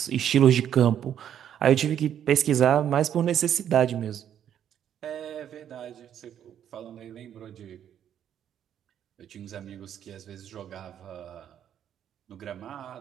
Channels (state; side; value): quieter; left; 9.8 dB